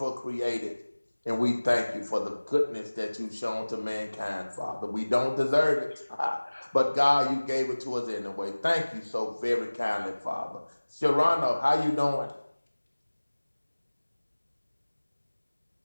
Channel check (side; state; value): both; inverted; correlation -1.00